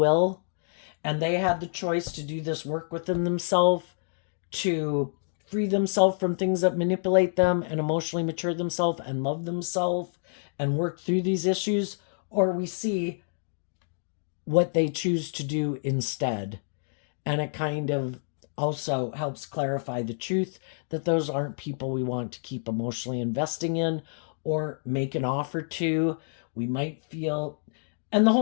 and they had the choice to do this work within themselves to free themselves from things that manipulate them and emotionally mature themselves and love themselves and work through these issues, or we see what they choose to do instead. And it kind of also helps clarify the truth that those aren't people we want to keep emotionally investing in or make an offer to. We might feel, and the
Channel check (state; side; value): silent; right; digital silence